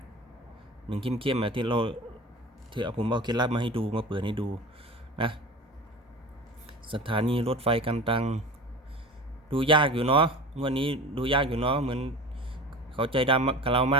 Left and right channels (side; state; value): both; normal; correlation 0.35